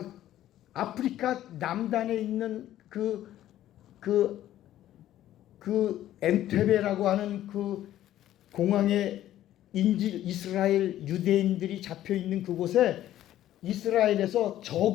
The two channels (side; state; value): right; quieter; 12.9 dB